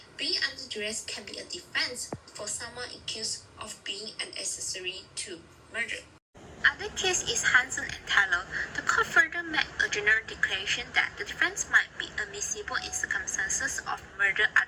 being under duress can be a defense for someone accused of being an accessory to murder. Other case is Hansen and Taylor. The court further made a general declaration that the defense might be admissible in circumstances of murder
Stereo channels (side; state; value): both; identical; correlation 1.00